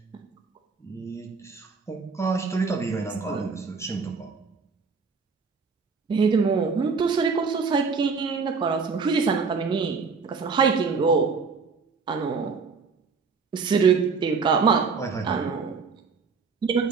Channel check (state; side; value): quieter; left; 5.0 dB